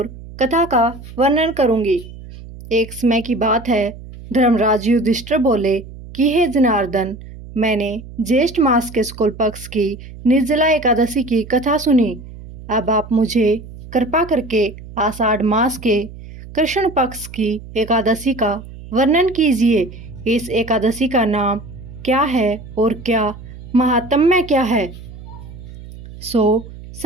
कथा का वर्णन करूंगी। एक समय की बात है, धर्मराज युधिष्ठिर बोले कि हे जनार्दन, मैंने ज्येष्ठ मास के शुक्ल पक्ष की निर्जला एकादशी की कथा सुनी। अब आप मुझे कृपा करके आषाढ़ मास के कृष्ण पक्ष की एकादशी का वर्णन कीजिए। इस एकादशी का नाम क्या है और क्या महात्म्य क्या है, सो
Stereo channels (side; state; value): right; noise; hum, 15 dB below the sound